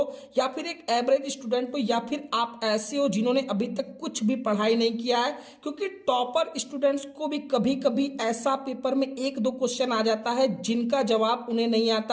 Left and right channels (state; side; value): identical; both; correlation 1.00